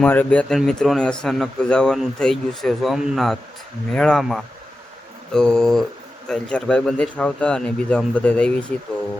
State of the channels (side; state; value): both; normal; correlation 0.92